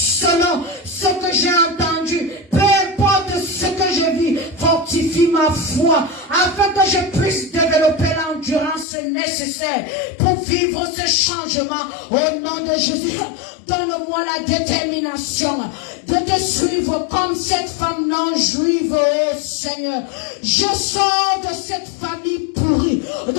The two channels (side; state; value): right; drops out; at 8.8 s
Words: ce que j'ai entendu, peu importe ce que je vis, fortifie ma foi, afin que je puisse développer l'endurance nécessaire pour vivre ce changement. Au nom de Jésus, donne-moi la détermination de te suivre comme cette femme non juive, oh Seigneur. Je sors de cette famille pourrie